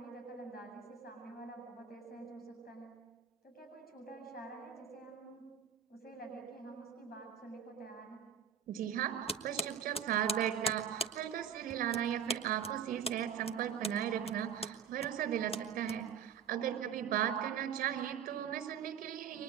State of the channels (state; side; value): quieter; left; 8.0 dB